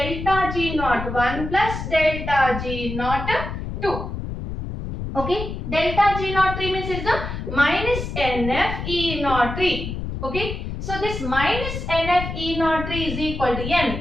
G naught 1 plus delta G naught 2. Okay, delta G naught 3 means is the minus NF E naught 3. Okay, so this minus NF E naught 3 is equal to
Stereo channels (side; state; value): left; noise; rumble, 6 dB below the sound